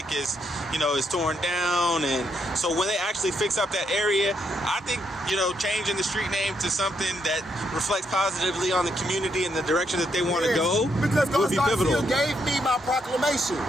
is torn down, and so when they actually fix up that area, I think changing the street name to something that reflects positively on the community and the direction that they want to go would be pivotal. Garcia gave me my proclamation.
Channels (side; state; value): both; normal; correlation 0.77